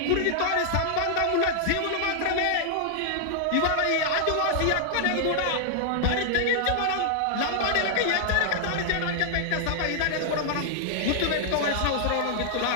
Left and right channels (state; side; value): different; both; correlation -0.01